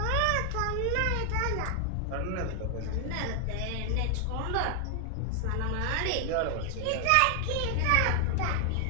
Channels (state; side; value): different; both; correlation 0.00